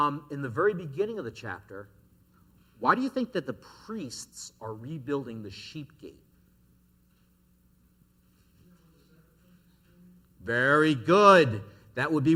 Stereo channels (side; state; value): both; identical; correlation 1.00